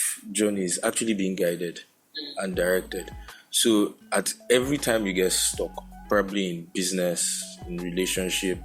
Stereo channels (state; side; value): identical; both; correlation 1.00